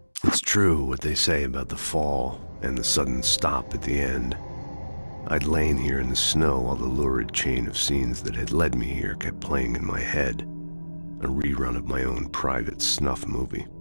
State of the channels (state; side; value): inverted; both; correlation -1.00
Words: It's true what they say about the fall and the sudden stop at the end. I'd lain here in the snow while the lurid chain of scenes that had led me here kept playing in my head. A rerun of my own private snuff movie.